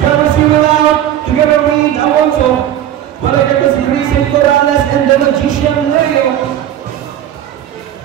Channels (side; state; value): left; quieter; 11.3 dB